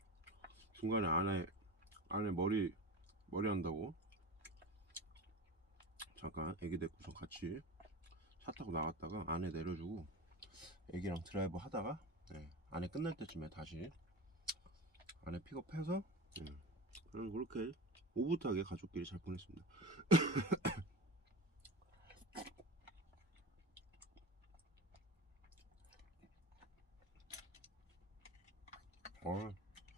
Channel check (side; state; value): both; normal; correlation 0.29